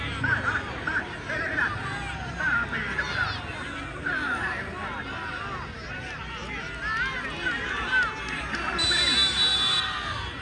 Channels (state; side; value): identical; both; correlation 1.00